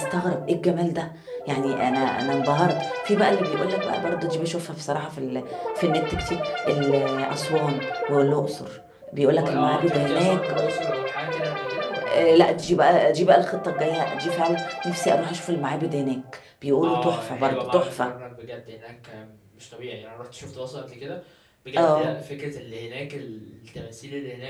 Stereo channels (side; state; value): both; identical; correlation 1.00